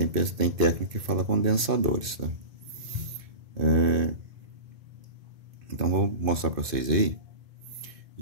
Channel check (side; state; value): left; late; 2.5 ms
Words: técnica que fala condensadores, tá? Então vou mostrar para vocês aí.